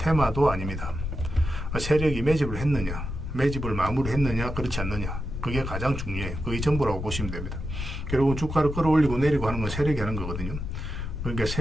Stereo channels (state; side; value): noise; left; rumble, 5 dB below the sound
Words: 아닙니다. 세력이 매집을 했느냐, 매집을 마무리했느냐, 그렇지 않느냐. 그게 가장 중요해요. 그게 전부라고 보시면 됩니다. 결국은 주가를 끌어올리고 내리고 하는 건 세력이 하는 거거든요. 그러니까